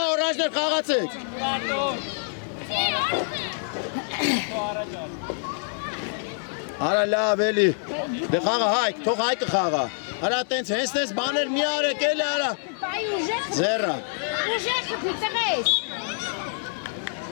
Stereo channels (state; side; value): silent; right; 56 dB below the other